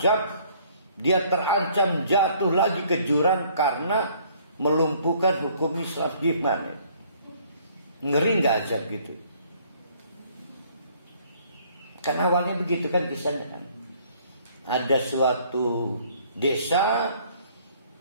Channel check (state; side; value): inverted; both; correlation -0.60